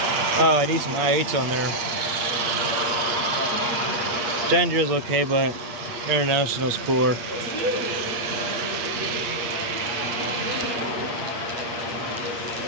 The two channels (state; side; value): late; left; 8.5 ms